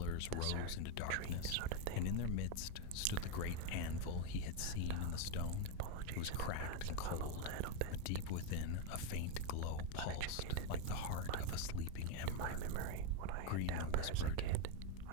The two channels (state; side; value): different; both; correlation 0.02